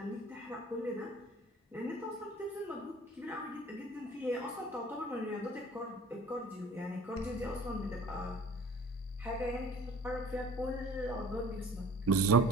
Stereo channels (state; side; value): normal; both; correlation 0.48